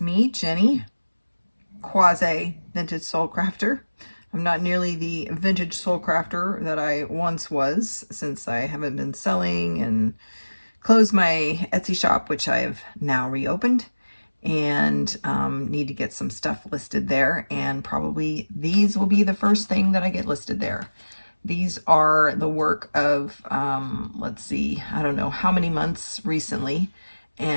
Jenny, quasi vintage soul crafter. I'm not nearly the vintage soul crafter that I once was, since I haven't been selling and closed my Etsy shop, which I have now reopened, and need to get some stuff listed there, and probably these will be the first thing that I get listed there. These are the work of, let's see, I don't know how many months recently,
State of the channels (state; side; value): inverted; both; correlation -1.00